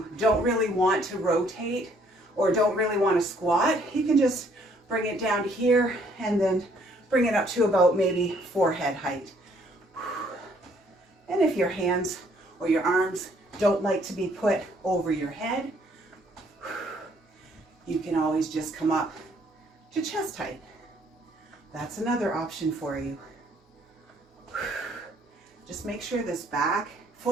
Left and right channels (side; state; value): both; normal; correlation 0.64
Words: don't really want to rotate or don't really want to squat, you can just bring it down to here and then bring it up to about maybe forehead height. And if your hands or your arms don't like to be put over your head, you can always just come up to chest height. That's another option for you. Just make sure this back